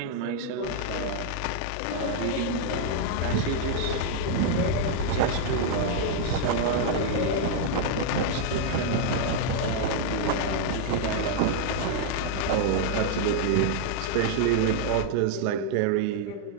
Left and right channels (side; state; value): both; different; correlation 0.00